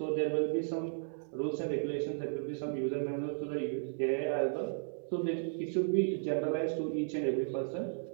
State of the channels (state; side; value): silent; left; digital silence